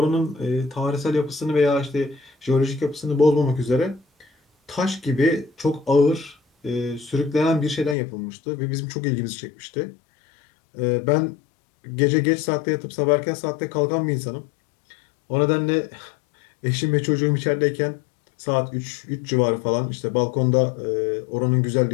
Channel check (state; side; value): drops out; right; at 8.0 s